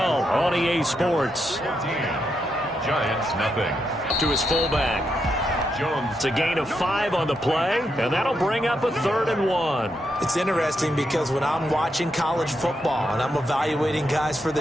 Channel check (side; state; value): both; normal; correlation 0.82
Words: on EA Sports. 14. Giants nothing. To his fullback. It's a gain of 5 on the play, and that'll bring up a 3rd and 1. It's interesting because when I'm watching college football and I'm evaluating guys for the